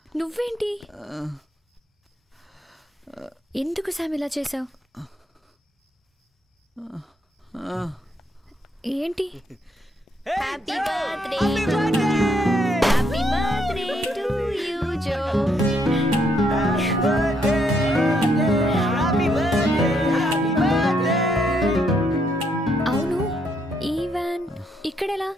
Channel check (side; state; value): both; normal; correlation 0.73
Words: నువ్వేంటి? ఎందుకు శామ్ ఇలా చేసావు? ఏంటి? Happy birthday, happy birthday to you Joe. అవును, ఈ వ్యాన్ ఇక్కడెలా?